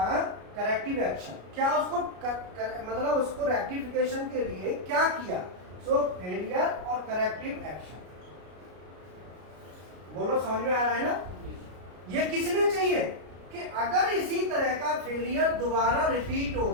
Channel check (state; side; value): late; left; 33 ms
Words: करेक्टिव एक्शन क्या, उसको मतलब उसको रेक्टिफिकेशन के लिए क्या किया। सो फेलियर और करेक्टिव एक्शन। बोलो समझ में आ रहा है ना? ये किस लिए चाहिए? कि अगर इसी तरह का फेलियर दोबारा रिपीट